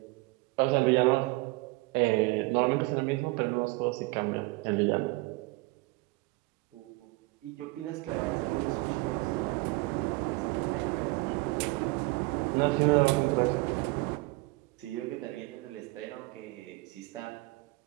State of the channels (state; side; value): quieter; left; 23.5 dB